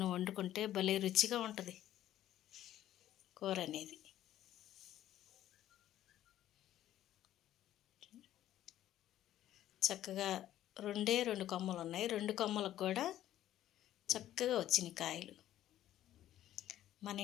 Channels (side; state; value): right; quieter; 12.7 dB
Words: వండుకుంటే భలే రుచిగా ఉంటుంది కూర అనేది. చక్కగా 2 కొమ్మలు ఉన్నాయి. 2 కొమ్మలకు కూడా చక్కగా వచ్చినాయి కాయలు. మన